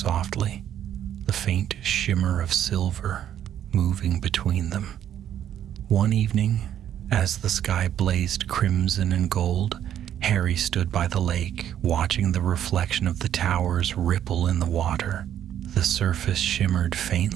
the faint shimmer of silver moving between them. One evening, as the sky blazed crimson and gold, Harry stood by the lake, watching the reflection of the towers ripple in the water. The surface shimmered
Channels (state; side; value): quieter; left; 10.4 dB